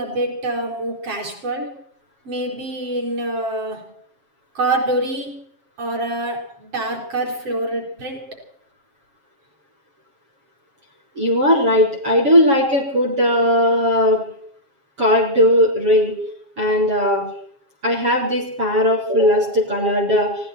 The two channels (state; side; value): late; left; 7.3 ms